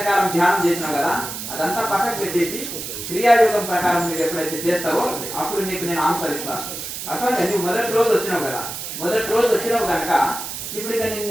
ధ్యానం చేసినావు కదా, అదంతా పక్కకు పెట్టేసి క్రియాయోగం ప్రకారం నువ్వు ఎప్పుడైతే చేస్తావో అప్పుడు నీకు నేను ఆన్సర్ ఇస్తాను. అట్లా నువ్వు మొదటి రోజు వచ్చినావు కదా, మొదటి రోజు వచ్చినావు కనుక ఇప్పుడు ఇక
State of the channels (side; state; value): right; noise; hiss, 7 dB below the sound